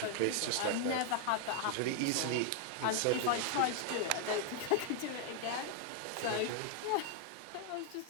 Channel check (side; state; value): both; different; correlation 0.00